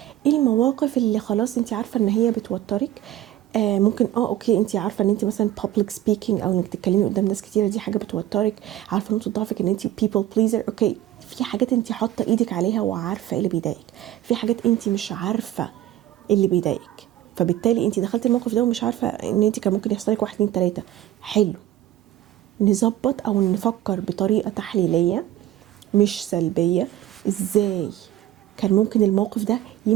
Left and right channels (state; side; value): quieter; left; 13.5 dB